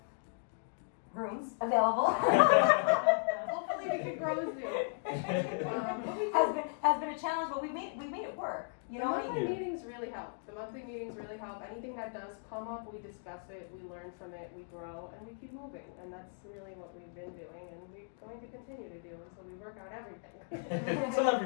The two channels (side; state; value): right; silent; digital silence